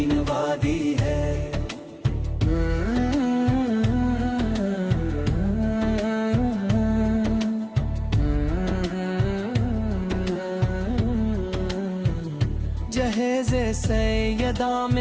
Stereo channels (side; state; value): both; identical; correlation 1.00